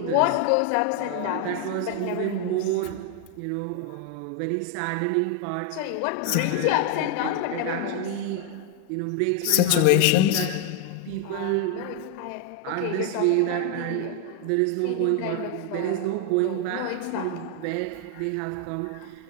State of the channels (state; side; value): different; both; correlation 0.01